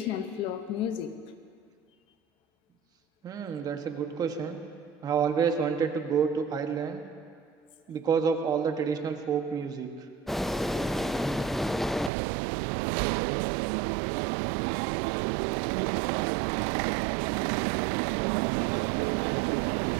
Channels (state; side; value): drops out; left; at 12.1 s